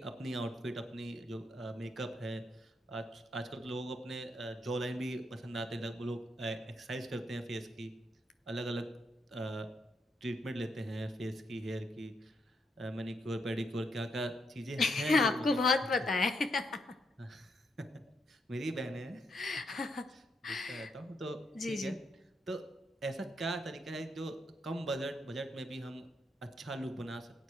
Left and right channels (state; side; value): normal; both; correlation 0.78